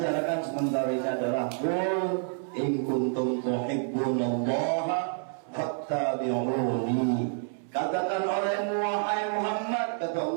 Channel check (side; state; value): left; silent; 59 dB below the other